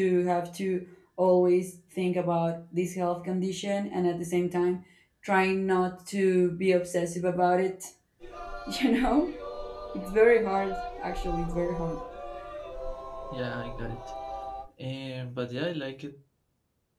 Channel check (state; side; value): identical; both; correlation 1.00